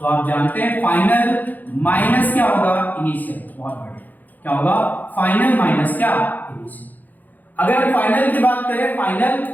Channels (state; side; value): late; right; 0.084 ms